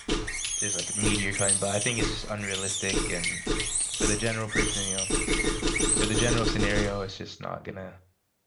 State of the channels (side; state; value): both; identical; correlation 1.00